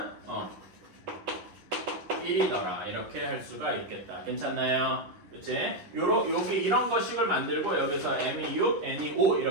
1이더라. 이렇게 할 수가 있겠다. 괜찮나요? 그치? 요게 이런 거식을 만들고 여기서 m이 6, n이 5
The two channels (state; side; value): late; left; 10 ms